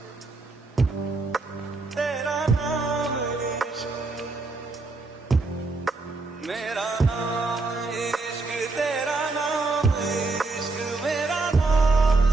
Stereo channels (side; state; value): left; quieter; 3.6 dB